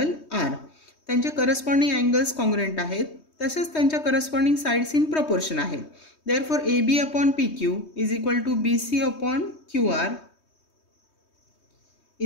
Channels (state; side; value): late; right; 3.2 ms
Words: R. त्यांचे corresponding angles congruent आहेत तसेच त्यांच्या करस्पॉन्डिंग साइड्स इन प्रपोर्शन आहेत. Therefore AB upon PQ is equal to BC upon QR